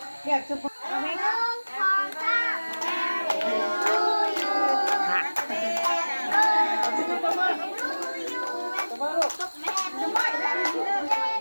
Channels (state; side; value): inverted; both; correlation -1.00